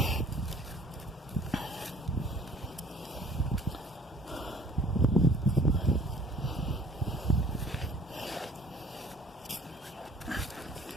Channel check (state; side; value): normal; both; correlation 0.52